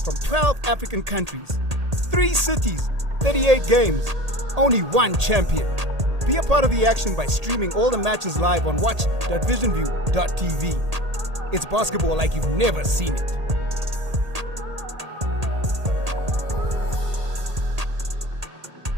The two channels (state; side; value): late; left; 1.8 ms